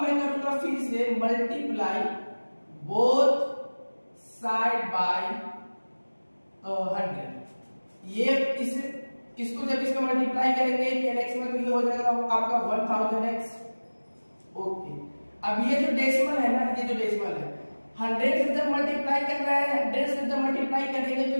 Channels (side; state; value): both; inverted; correlation -1.00